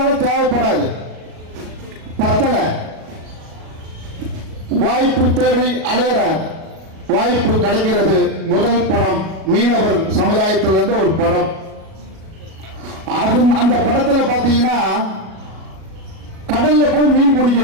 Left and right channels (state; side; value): late; left; 37 ms